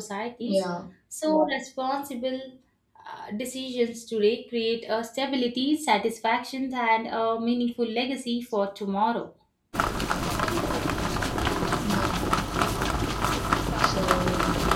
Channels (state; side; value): identical; both; correlation 1.00